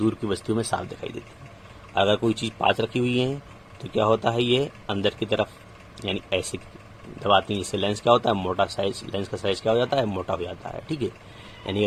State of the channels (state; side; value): identical; both; correlation 1.00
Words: की वस्तुओं में साफ दिखाई देती है। अगर कोई चीज़ पास रखी हुई है तो क्या होता है? ये अंदर की तरफ यानी ऐसे दबाती हैं, जिससे लेंस क्या होता है? मोटा साइज, लेंस का साइज क्या हो जाता है? मोटा हो जाता है। ठीक है, यानी